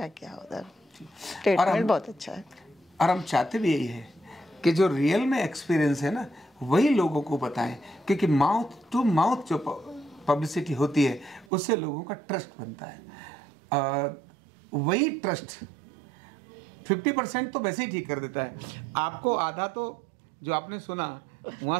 आओ उधर, ट्रीटमेंट बहुत अच्छा है। और हम चाहते भी यही है कि जो रियल में एक्सपीरियंस है ना वही लोगों को बताएं, क्योंकि माउथ टू माउथ जो पब्लिसिटी होती है उससे लोगों का ट्रस्ट बनता है। वही ट्रस्ट 50% तो वैसे ही ठीक कर देता है आपको, आधा तो जो आपने सुना वहाँ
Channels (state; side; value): drops out; left; at 11.5 s